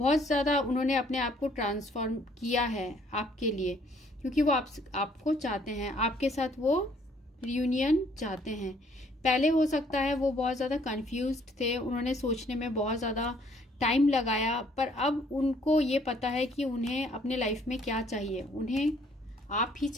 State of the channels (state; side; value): normal; both; correlation 0.63